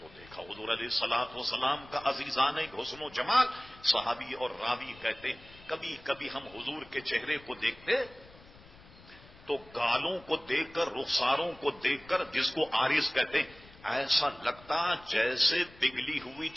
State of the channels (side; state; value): left; noise; rumble, 22 dB below the sound